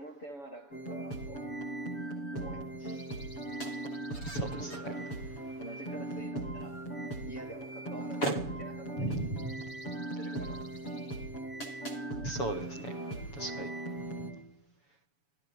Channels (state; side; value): late; right; 7.1 ms